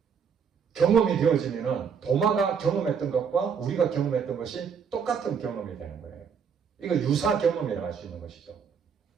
경험이 되어지면 도마가 경험했던 것과 우리가 경험했던 것이 똑같은 경험이 되는 거예요. 이거 유사 경험이라고 할 수 있는 것이죠.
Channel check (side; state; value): left; quieter; 6.7 dB